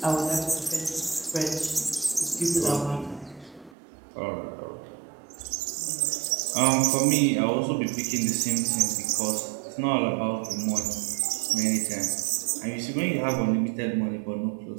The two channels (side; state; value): left; drops out; at 3.8 s